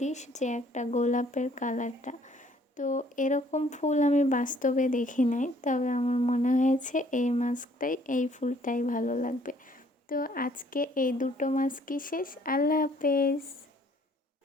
যে একটা গোলাপের কালারটা। তো এরকম ফুল আমি বাস্তবে দেখি নাই, তবে আমার মনে হয়েছে এই মাস্কটাই, এই ফুলটাই ভালো লাগবে। তো আজকে এই দুটো মাস্কই শেষ। আল্লাহ হাফেজ।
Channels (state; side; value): normal; both; correlation 0.61